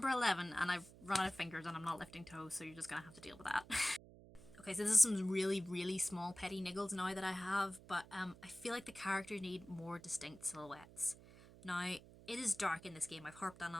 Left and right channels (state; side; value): noise; right; hum, 20 dB below the sound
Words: 11, and I've run out of fingers and I'm not lifting toes, so you're just going to have to deal with that. Okay, so this is some really, really small petty niggles now that I have, but I feel like the characters need more distinct silhouettes. Now, it is dark in this game, I've harped on